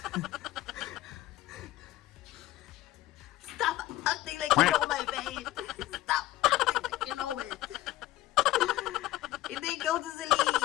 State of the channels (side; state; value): right; quieter; 15.8 dB